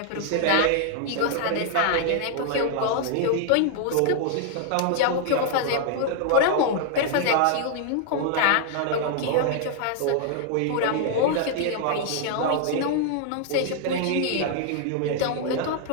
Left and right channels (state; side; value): different; both; correlation 0.00